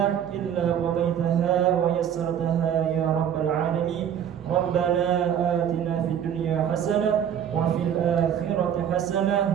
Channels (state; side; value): quieter; left; 9.2 dB